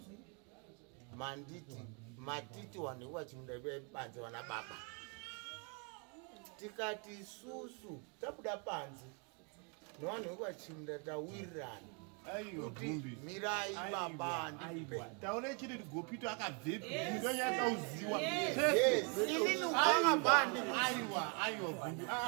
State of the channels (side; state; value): left; quieter; 36.0 dB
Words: manditi matiti vanhu vekwachimuda budai panzi vana baba tikati isusu tabuda panzi nevanhu vekwachimuda tawirirana kuti mirai baba ndipe taone chiri kuti gopito akabvepi ndonyakauziwa inini ukakabva aiwa